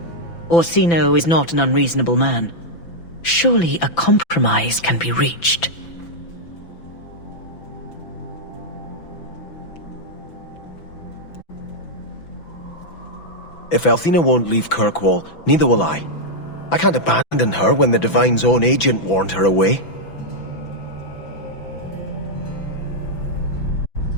Orsino is not an unreasonable man. Surely a compromise can be reached. If Althena won't leave Kirkwall, neither will I. I can't abandon her when the Divine's own agent warned her away.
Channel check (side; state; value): right; late; 6.0 ms